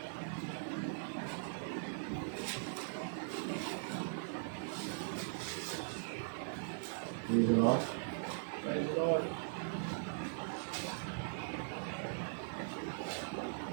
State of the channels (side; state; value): left; silent; 51 dB below the other